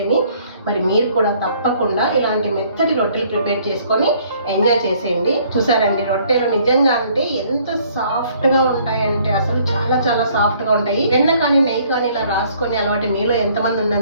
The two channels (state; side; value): inverted; both; correlation -0.61